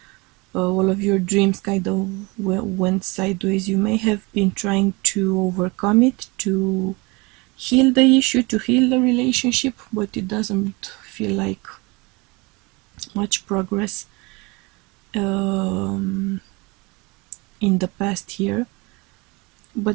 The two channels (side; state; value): left; quieter; 26.3 dB